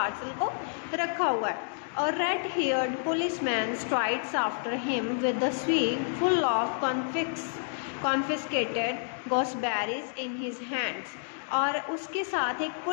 को रखा हुआ है। और red haired policeman strides after him with the sieve full of confiscated gooseberries in his hands. और उसके साथ एक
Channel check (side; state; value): right; silent; digital silence